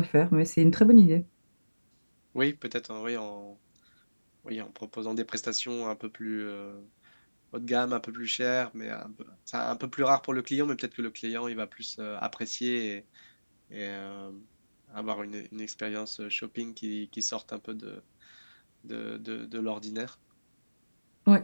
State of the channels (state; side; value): inverted; both; correlation -1.00